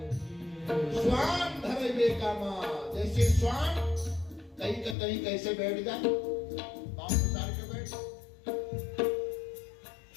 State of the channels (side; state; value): right; drops out; at 5.0 s